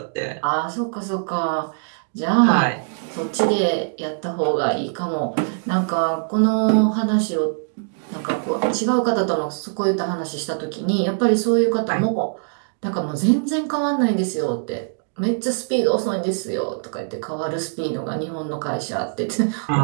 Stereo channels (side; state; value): left; silent; digital silence